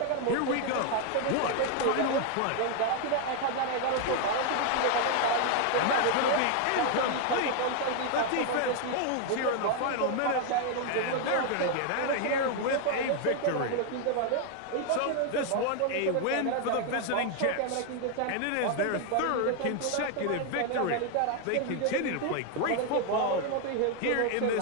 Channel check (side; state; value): both; different; correlation 0.00